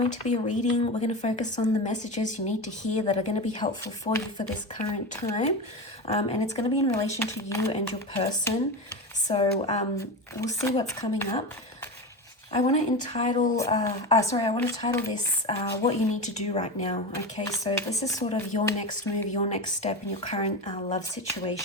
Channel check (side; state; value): both; normal; correlation 0.22